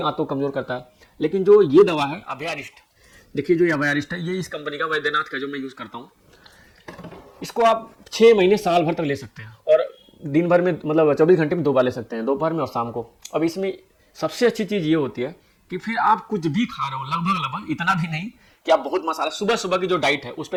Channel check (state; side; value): identical; both; correlation 1.00